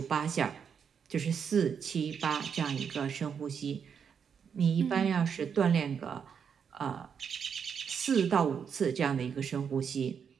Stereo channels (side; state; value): left; quieter; 7.0 dB